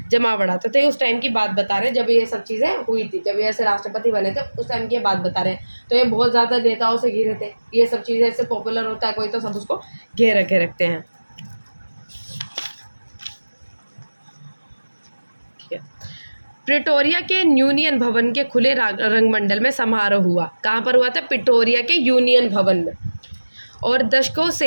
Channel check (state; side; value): inverted; both; correlation -1.00